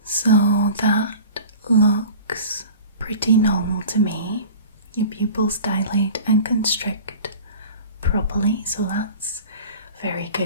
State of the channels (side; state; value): both; inverted; correlation -0.39